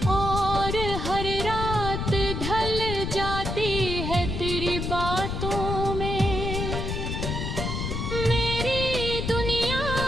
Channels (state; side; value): noise; left; rumble, 3 dB below the sound